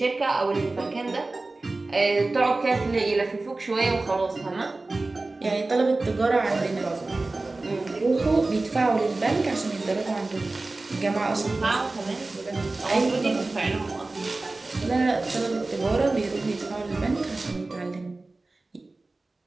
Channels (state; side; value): quieter; left; 3.2 dB